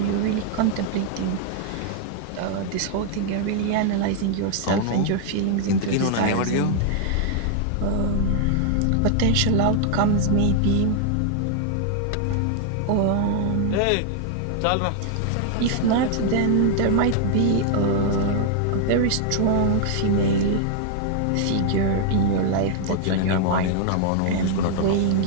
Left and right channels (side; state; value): both; different; correlation 0.00